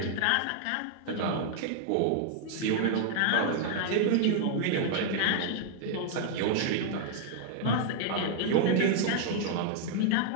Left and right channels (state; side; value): different; both; correlation -0.01